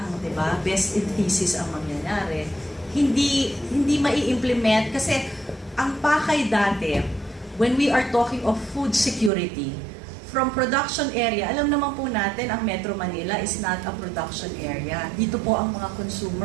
di ba? Best in thesis ang mangyayari. Hindi mai-implement kasi ang pakay dati, when we are talking of food security, from production area, alam naman po natin, ang Metro Manila is not a production area. Dito po ang mga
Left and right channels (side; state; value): left; drops out; at 9.3 s